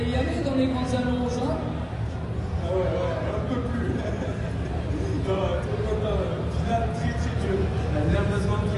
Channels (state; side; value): identical; both; correlation 1.00